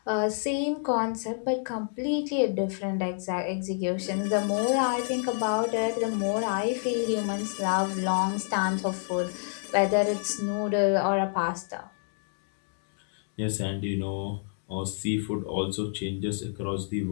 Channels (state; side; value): silent; right; digital silence